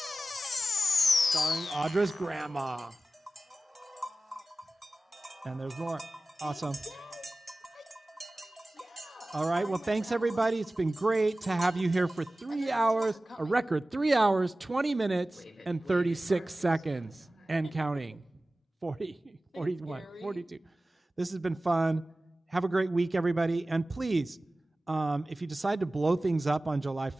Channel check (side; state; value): both; normal; correlation 0.96